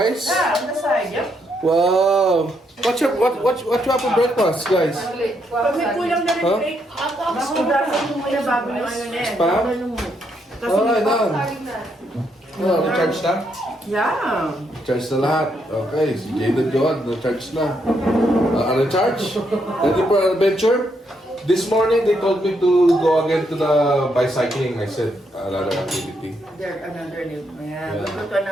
Yeah, on the side, yep. Wow. What you have for breakfast, guys? Pag may kulang na rin, Rick, masudasan mo muna bago yung ano na eh. Spam? Alright, done. Oh, na-charge na? Yeah. Charge na lahat. Okay, si Jada Joad, na-charge na. Ano-charge? Ready for adventure? This morning, they told me to go again to the bicycling. I said, another activity. There, another new. Yeah. Yeah. We'll go to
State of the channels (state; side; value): normal; both; correlation 0.77